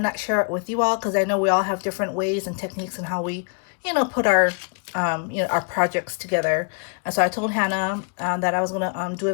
share it with you all, because I know we all have different ways and techniques and how we put our our projects together. And so I told Hannah that I was gonna do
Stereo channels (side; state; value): right; quieter; 38.7 dB